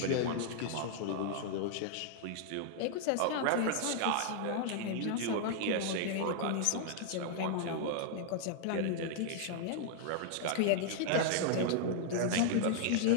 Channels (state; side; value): different; both; correlation 0.00